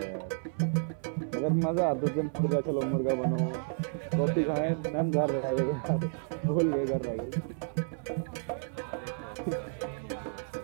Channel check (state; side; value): silent; left; 57 dB below the other